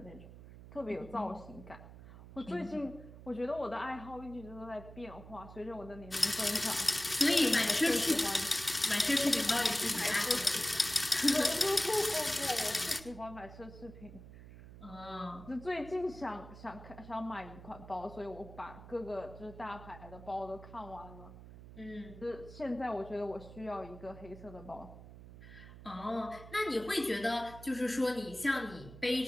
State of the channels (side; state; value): right; noise; hum, 16 dB below the sound